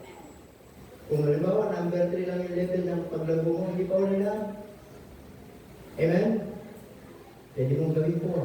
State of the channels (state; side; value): identical; both; correlation 1.00